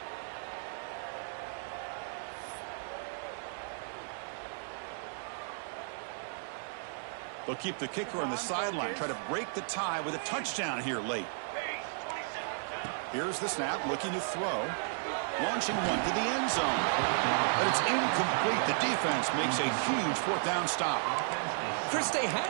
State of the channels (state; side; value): silent; left; 55 dB below the other